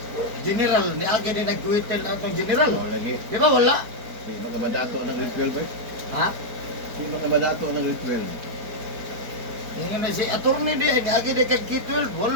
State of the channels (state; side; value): late; left; 4.6 ms